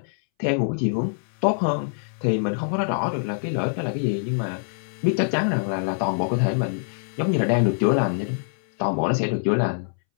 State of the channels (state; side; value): silent; right; 62 dB below the other